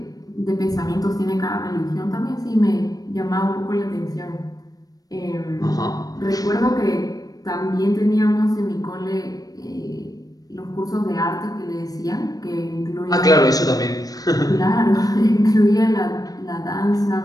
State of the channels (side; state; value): right; late; 0.18 ms